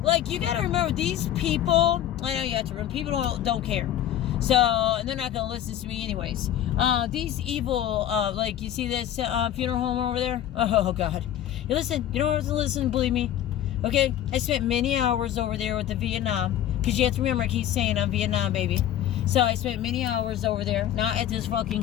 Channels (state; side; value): quieter; right; 11.4 dB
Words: Like you gotta remember these people. I know you have to remember people don't care. So and they're not gonna listen to me anyways. These evil like you see this funeral home over there. Oh God. You listen. You don't have to listen. Believe me. Okay. I spent many hours over there with the Vietnam because you have to remember I keep saying I'm Vietnam baby. So I spent many hours over there, not at this fucking